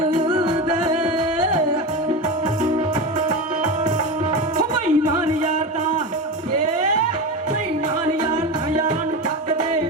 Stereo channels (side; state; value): both; normal; correlation 0.22